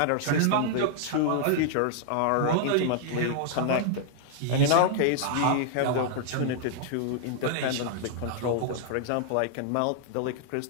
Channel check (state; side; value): different; both; correlation -0.01